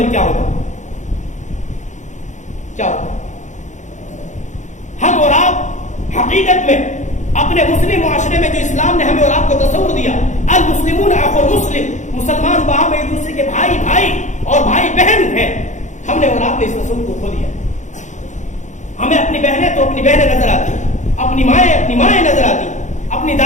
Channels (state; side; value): late; right; 0.35 ms